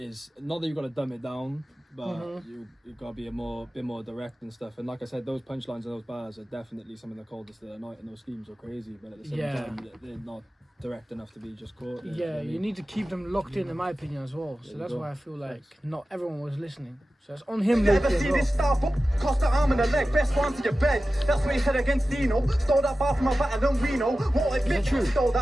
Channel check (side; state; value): both; normal; correlation 0.94